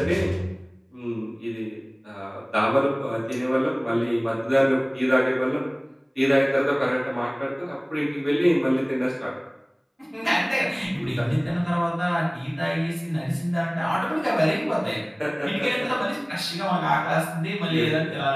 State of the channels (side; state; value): both; identical; correlation 1.00